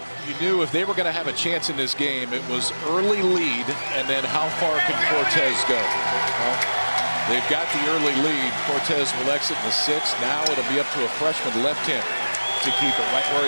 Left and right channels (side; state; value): both; inverted; correlation -1.00